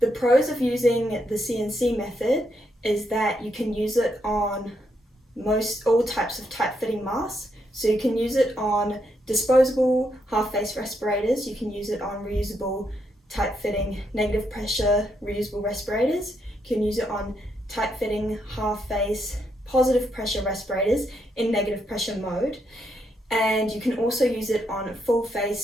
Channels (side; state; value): both; normal; correlation 0.78